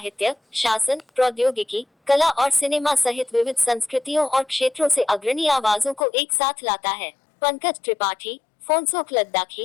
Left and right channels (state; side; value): drops out; right; at 6.1 s